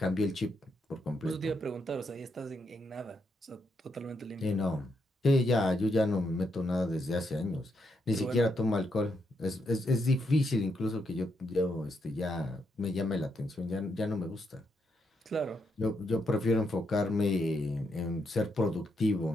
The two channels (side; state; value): both; normal; correlation 0.79